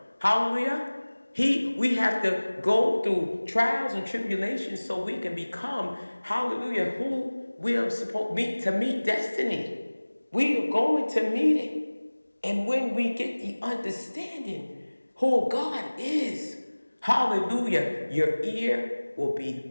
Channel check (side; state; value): both; inverted; correlation -1.00